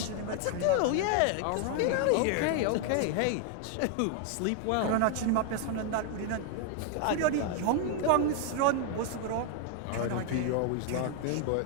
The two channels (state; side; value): different; both; correlation 0.00